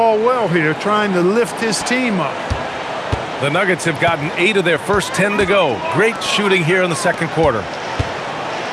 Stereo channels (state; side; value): identical; both; correlation 1.00